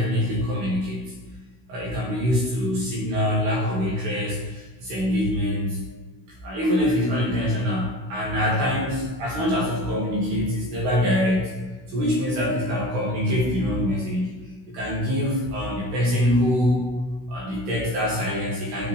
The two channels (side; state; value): left; late; 16 ms